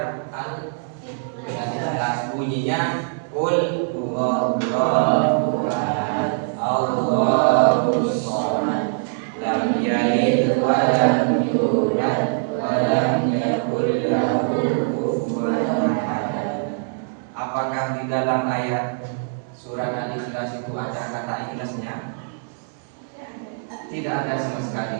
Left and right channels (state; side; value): silent; left; digital silence